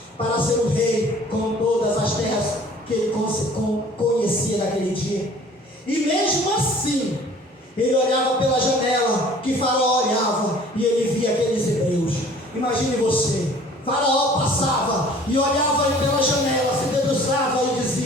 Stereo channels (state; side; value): normal; both; correlation 0.50